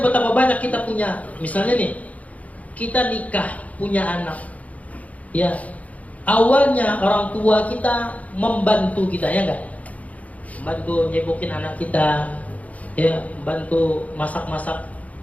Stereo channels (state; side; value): late; right; 0.070 ms